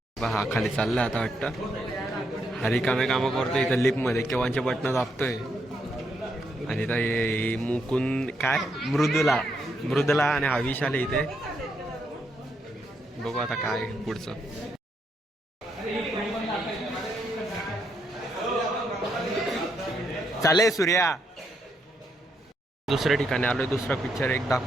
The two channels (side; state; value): both; normal; correlation 0.78